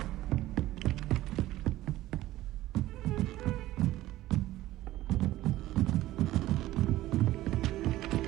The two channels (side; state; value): left; quieter; 15.6 dB